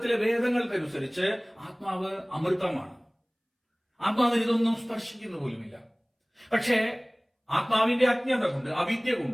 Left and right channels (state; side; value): identical; both; correlation 1.00